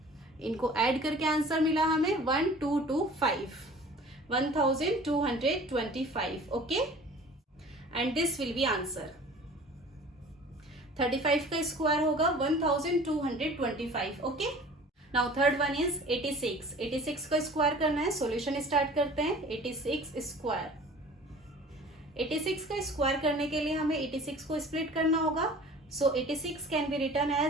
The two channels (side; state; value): both; normal; correlation 0.45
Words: इनको ऐड करके आंसर मिला हमें 1225 1225. Okay. And this will be answer. 35 का स्क्वायर होगा 1225. Okay. Now third one is 86. 86 का स्क्वायर करना है. सॉल्यूशन स्टार्ट करते हैं. 86 स्क्वायर. 86 का स्क्वायर करने के लिए हमें 86 को स्प्लिट करना होगा. So 86 can be written